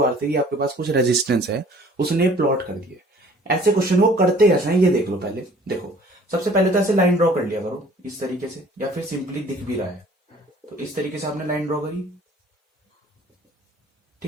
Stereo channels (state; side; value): normal; both; correlation 0.53